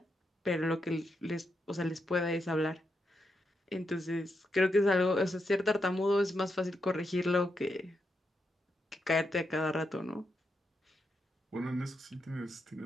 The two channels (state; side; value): normal; both; correlation 0.83